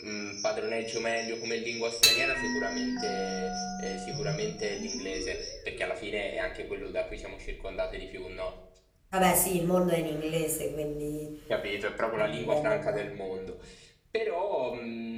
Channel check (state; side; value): identical; both; correlation 1.00